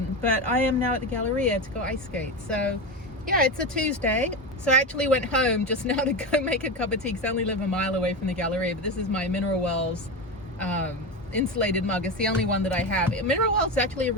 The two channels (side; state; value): both; normal; correlation 0.18